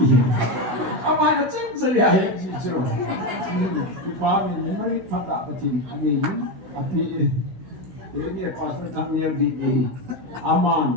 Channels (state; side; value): late; left; 16 ms